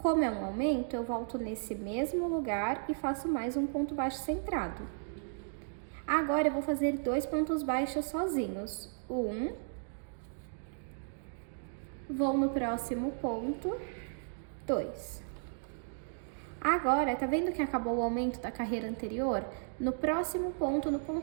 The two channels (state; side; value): silent; left; digital silence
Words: é um aumento, eu volto nesse mesmo lugar e faço mais um ponto baixo centrado. Agora, eu vou fazer 2 pontos baixos sozinhos. Vou no próximo ponto, 2. Agora, tá vendo que acabou o aumento da carreira anterior? No próximo ponto, no